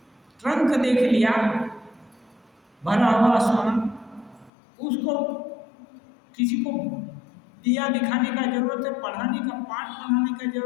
ट्रंक देख लिया भरा हुआ सोना, उसको किसी को दिया दिखाने का जरूरत है, पढ़ाने का पाठ पढ़ाने का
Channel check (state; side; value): drops out; right; at 4.5 s